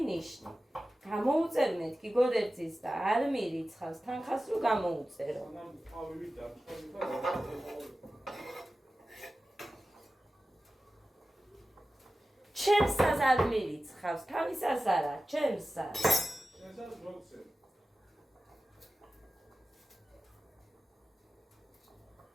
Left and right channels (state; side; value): normal; both; correlation 0.94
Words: გამოუწერ მეთქი გოდერძის და არ მირიცხავს, თანხას რო გამოუწერო. ჩემსაც არ მირიცხავს, თავისას არა, ჩემსაც. შენსაც მოგცემ.